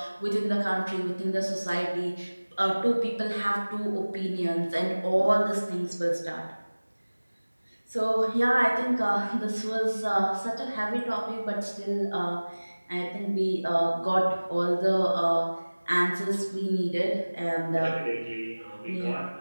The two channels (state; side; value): inverted; both; correlation -1.00